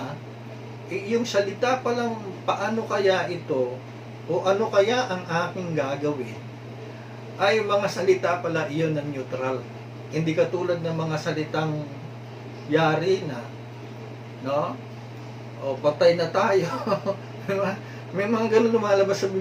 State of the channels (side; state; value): both; identical; correlation 1.00